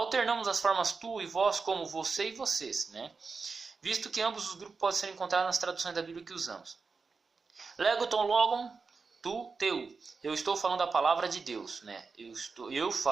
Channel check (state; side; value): quieter; left; 4.7 dB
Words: as formas tu e vós como você e vocês, né? Visto que ambos os grupos podem ser encontrados nas traduções da Bíblia que usamos. Lego ton logon tu teu. Eu estou falando a palavra de Deus, né? Eu